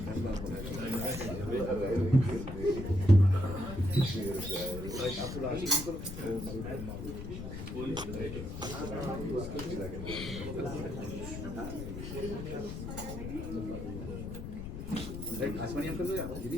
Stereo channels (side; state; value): left; noise; rumble, 7 dB below the sound